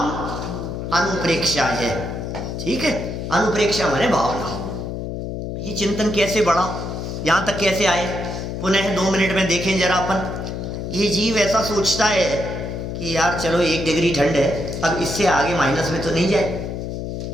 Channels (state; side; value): noise; left; hum, 5 dB below the sound